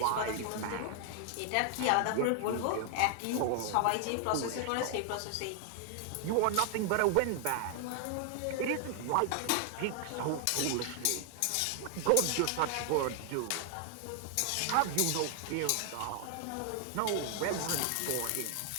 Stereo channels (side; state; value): both; different; correlation 0.00